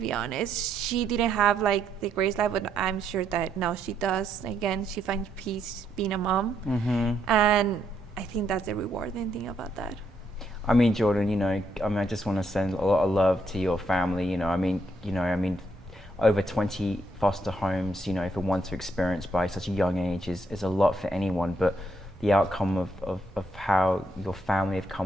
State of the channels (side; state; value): both; normal; correlation 0.75